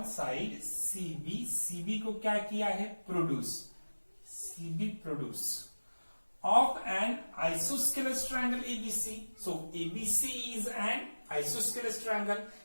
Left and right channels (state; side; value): inverted; both; correlation -1.00